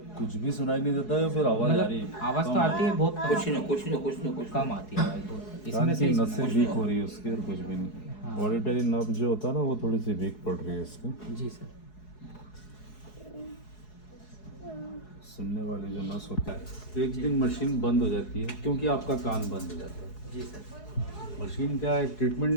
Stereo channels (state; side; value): late; right; 4.7 ms